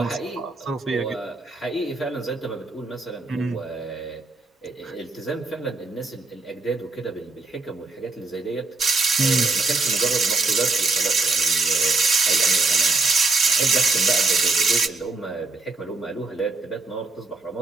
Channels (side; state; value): left; quieter; 3.7 dB